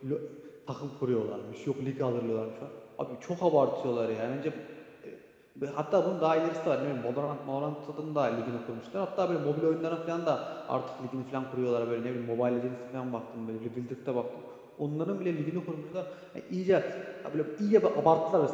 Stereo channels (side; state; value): both; identical; correlation 1.00